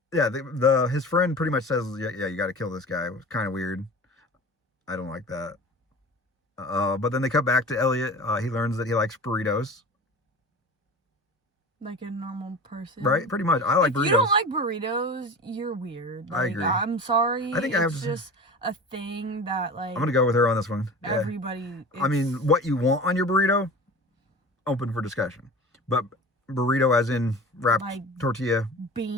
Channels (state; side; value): normal; both; correlation 0.36